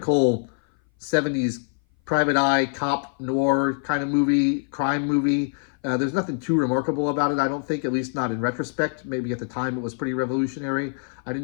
70s private eye, cop, noir kind of movie, crime movie. There's nothing too remarkable about it, I don't think, at least not in retrospect. Maybe at the time it was pretty revolutionary. I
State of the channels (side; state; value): right; silent; 58 dB below the other